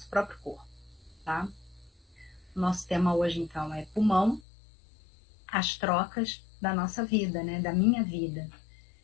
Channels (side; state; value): right; drops out; at 4.4 s